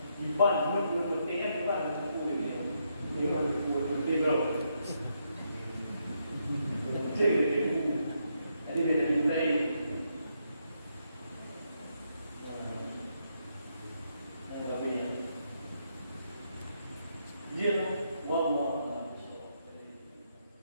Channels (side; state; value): both; inverted; correlation -0.78